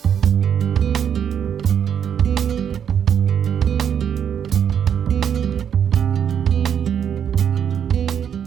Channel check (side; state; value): left; quieter; 8.4 dB